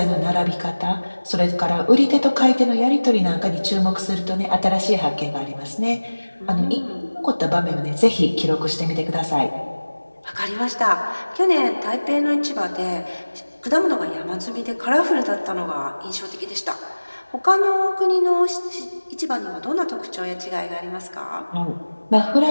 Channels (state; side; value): inverted; both; correlation -1.00